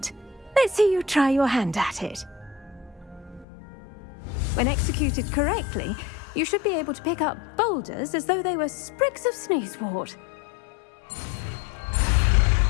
Let's see you try your hand at it. When executed correctly, you should be able to pick up boulders as though they were sprigs of sneezewort.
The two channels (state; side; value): drops out; right; at 3.5 s